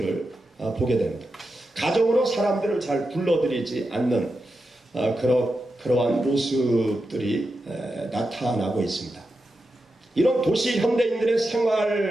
보게 됩니다. 가정으로 사람들을 잘 불러들이지 않는 그러한 모습들이 나타나고 있습니다. 이런 도시 현대인들의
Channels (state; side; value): normal; both; correlation 0.89